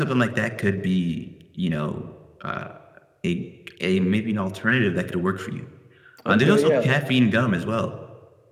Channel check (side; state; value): both; identical; correlation 1.00